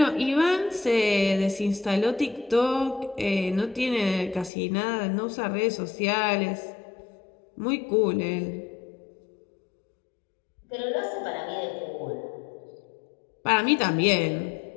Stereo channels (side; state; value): right; drops out; at 4.5 s